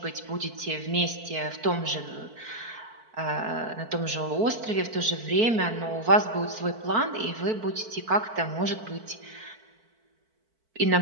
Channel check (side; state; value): left; late; 4.5 ms